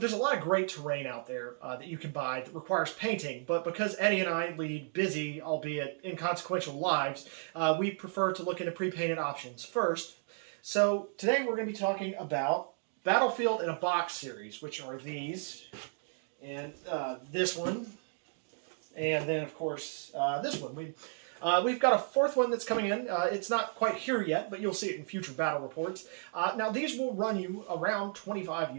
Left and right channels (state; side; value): silent; left; 55 dB below the other